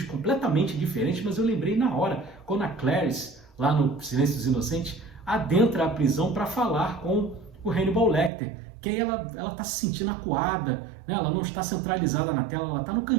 completamente diferentes, mas eu lembrei na hora, quando a Clarice, lá no Silêncio dos Inocentes, adentra a prisão para falar com o Hannibal Lecter, que aí ela está se sentindo acuada, né? Ela não está centralizada na tela, ela está no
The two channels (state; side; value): drops out; left; at 8.3 s